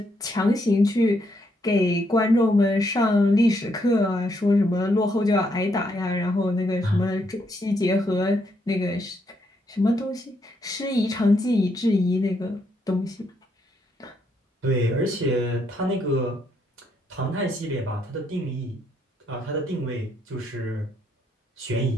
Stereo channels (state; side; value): normal; both; correlation 0.75